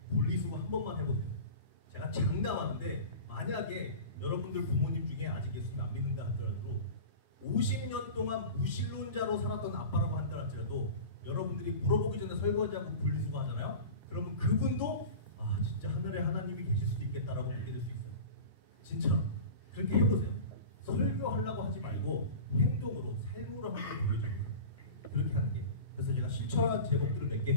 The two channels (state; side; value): inverted; both; correlation -0.34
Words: 분리수거 한 번만 해보세요. 제가 장담하는데 만약에 여러분들 부모님 중에 아직 예수님 안 믿는다 하더라도 50년 동안 무신론자로 살았던 아빠라고 한다 할지라도 여러분들이 물어보기 전에 설거지하고 분리수거 하잖아요. 그러면 그분도 아 진짜 하늘에 하나님이 계실 수도 있겠다라고 믿게 될 수 있어요. 진짜 그렇게 해보세요. 설교하려고 하지 말고 행동으로 삶으로 한번 보여줘요. 그렇게 하는 게. 그래서 제가 실천한 제목들을 몇 개